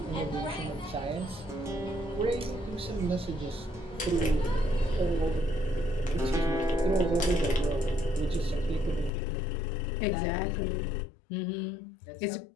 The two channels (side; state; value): right; drops out; at 9.1 s